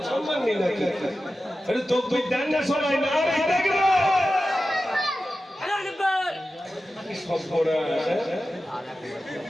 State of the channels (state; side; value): normal; both; correlation 0.93